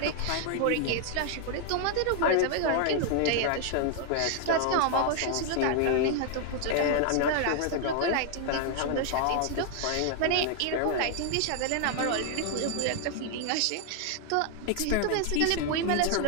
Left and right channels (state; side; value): different; both; correlation 0.00